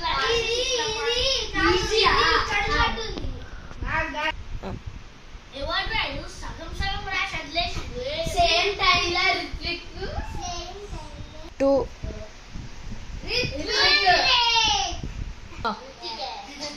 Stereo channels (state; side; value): identical; both; correlation 1.00